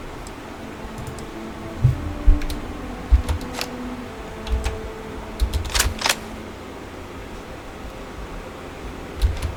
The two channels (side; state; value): both; identical; correlation 1.00